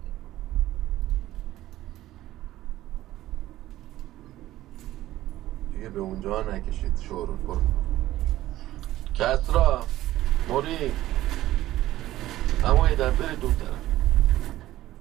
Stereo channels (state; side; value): quieter; left; 15.1 dB